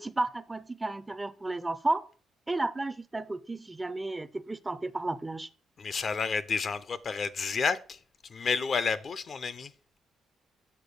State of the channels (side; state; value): both; normal; correlation 0.88